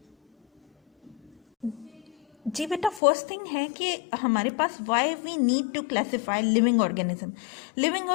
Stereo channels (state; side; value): drops out; right; at 3.0 s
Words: जी बेटा, फर्स्ट थिंग है कि हमारे पास why we need to classify living organism. Living